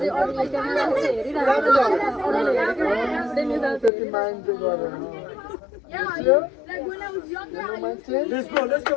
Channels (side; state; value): right; drops out; at 3.9 s